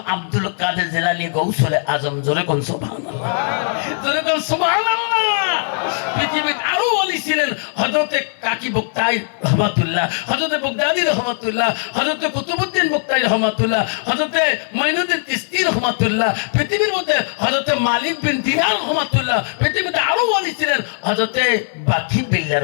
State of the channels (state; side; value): silent; right; digital silence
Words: আব্দুল কাদের জিলানী গৌসুলে আজম। জোরে কোন সুবহানাল্লাহ, জোরে কোন সুবহানাল্লাহ। পৃথিবীর আরো অলি ছিলেন হযরতে কাকি বক্তাই রহমাতুল্লাহ, হযরতে বগদাদি রহমাতুল্লাহ, হযরতে কুতুবউদ্দিন বক্তাই রহমাতুল্লাহ, হযরতে মাইনুদ্দিন চিশতি রহমাতুল্লাহ। পৃথিবীর মধ্যে হযরতে মালিক বিন দিনার রহমাতুল্লাহ। পৃথিবীতে আরো অলি ছিলেন হযরতে বাকি বিল্লাহ